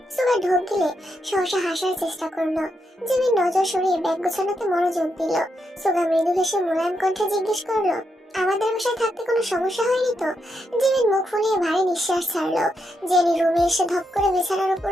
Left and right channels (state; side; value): normal; both; correlation 0.82